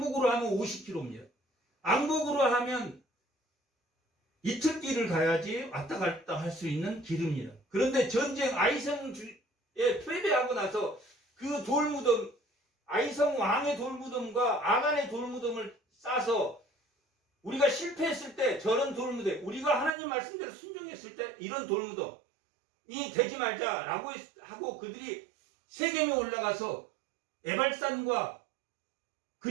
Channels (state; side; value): drops out; left; at 19.9 s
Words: 하면 50km입니다. 왕복으로 하면 이틀 길을 가야지 왔다 갔다 할 수 있는 길입니다. 그런데 전쟁 아이성에 패배하고 나서 그 돌무덤 아이성 왕의 돌무덤과 아간의 돌무덤을 싸서 우리가 실패했을 때 저런 돌무덤 우리가 하나님 말씀대로 순종했을 때 이런 돌무덤이 되지 말자라고 하고 그들이 세겜에 올라가서 에발산과